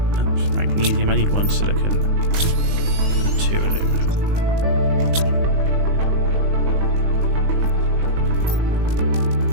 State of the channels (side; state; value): left; late; 19 ms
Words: Magnesium, I need 1 silicon and 2 aluminum.